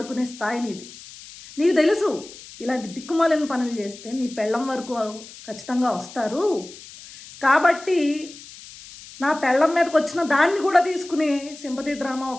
స్థాయి నీది. నీకు తెలుసు ఇలాంటి దిక్కుమాలిన పనులు చేస్తే నీ పెళ్ళం వరకు ఖచ్చితంగా వస్తారు. కాబట్టి నా పెళ్ళం మీదకి వచ్చిన దాన్ని కూడా తీసుకుని సింపతి డ్రామా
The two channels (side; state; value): left; noise; hiss, 17 dB below the sound